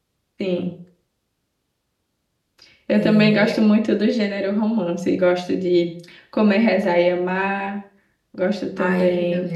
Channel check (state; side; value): identical; both; correlation 1.00